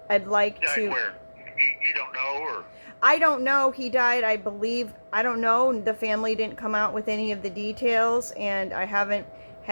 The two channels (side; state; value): both; inverted; correlation -1.00